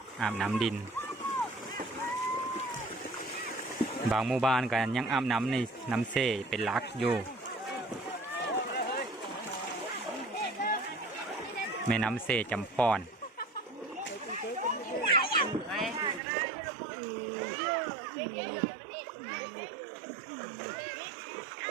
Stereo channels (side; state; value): left; drops out; at 16.2 s